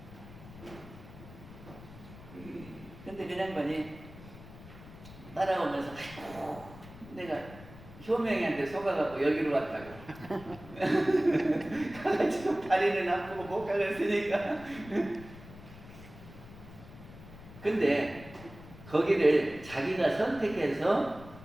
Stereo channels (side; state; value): left; noise; rumble, 17 dB below the sound